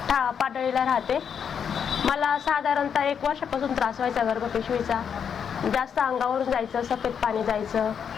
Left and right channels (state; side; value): quieter; right; 7.4 dB